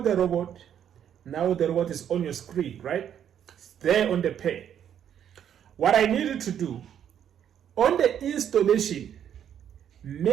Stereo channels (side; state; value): left; quieter; 9.4 dB